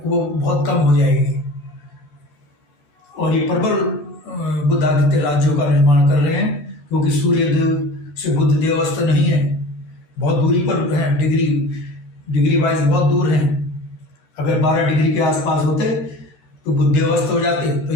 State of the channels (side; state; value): right; late; 14 ms